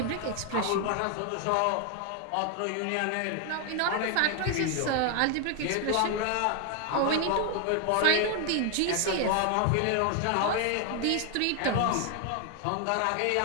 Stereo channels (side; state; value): both; different; correlation 0.01